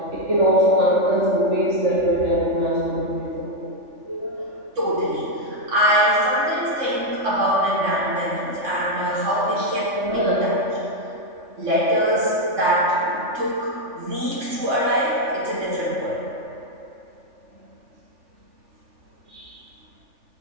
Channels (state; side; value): late; left; 3.4 ms